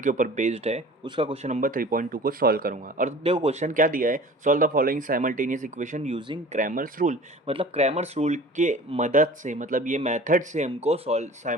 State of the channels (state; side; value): normal; both; correlation 0.43